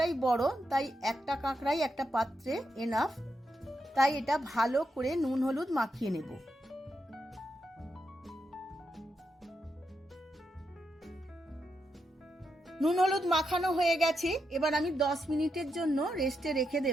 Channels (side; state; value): both; normal; correlation 0.84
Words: বড়, তাই একটা কাঁকড়াই একটা পাত্রে এনাফ। তাই এটা ভালো করে নুন হলুদ মাখিয়ে নেব। নুন হলুদ মাখানো হয়ে গেছে। এবার আমি 10 মিনিটের জন্য রেস্টে রেখে